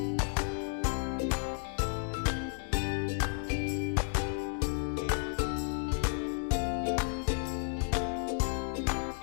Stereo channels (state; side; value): silent; right; 56 dB below the other